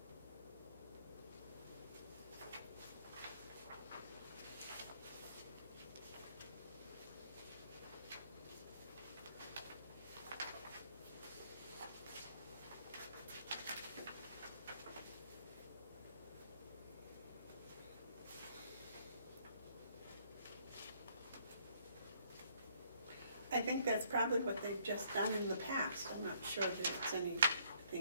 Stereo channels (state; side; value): inverted; both; correlation -0.66